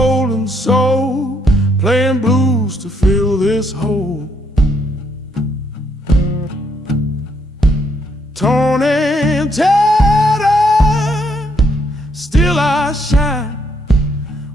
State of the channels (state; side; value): normal; both; correlation 0.73